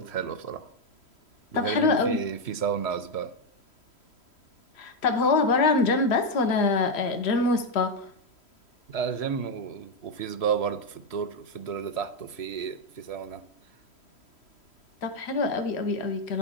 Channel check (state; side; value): late; right; 3.1 ms